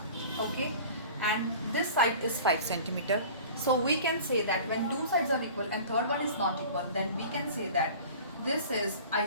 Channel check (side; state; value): both; inverted; correlation -0.41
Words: Okay, and this side is 5 centimeter. So we can say that when two sides are equal and third one is not equal, then we can say that this is